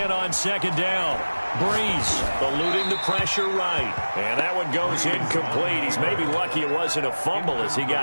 on 2nd down. Brees eluding the pressure right. And that one goes incomplete. He's maybe lucky it wasn't a fumble as he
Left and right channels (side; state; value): both; inverted; correlation -1.00